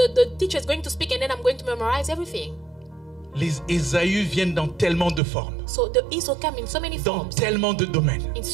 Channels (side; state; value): left; drops out; at 5.2 s